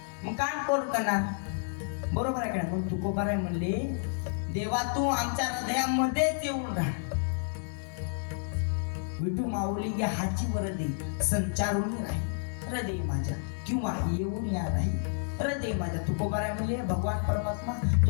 मग काम कोण करणार? बरोबर आहे का नाही? मग तुकोबाराय म्हणले, देवा तू आमच्या हृदयामध्येच येऊन राहा. विठू माऊली या हाची वरदी संचारून नाही हृदय माझ्या, किंवा येऊन या नाही हृदय माझ्या. तुकोबाराय म्हणले, भगवान परमात्मा तू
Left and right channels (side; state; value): right; silent; 58 dB below the other